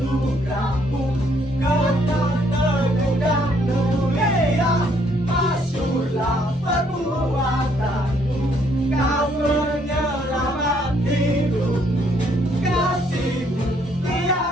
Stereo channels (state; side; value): normal; both; correlation 0.68